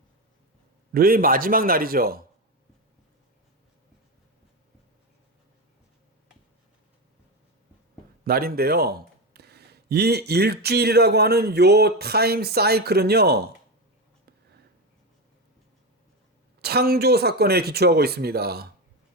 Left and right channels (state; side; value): normal; both; correlation 0.15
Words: 마지막 날이죠. 날인데요. 이 일주일이라고 하는 요 타임 사이클은요, 창조 사건에 기초하고 있습니다.